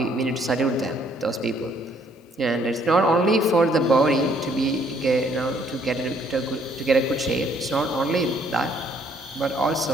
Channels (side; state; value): both; normal; correlation 0.65